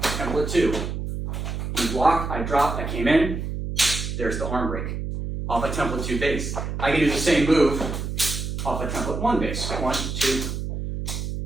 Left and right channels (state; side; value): noise; right; hum, 4 dB below the sound